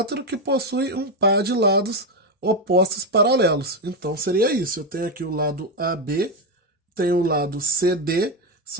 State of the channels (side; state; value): both; normal; correlation 0.08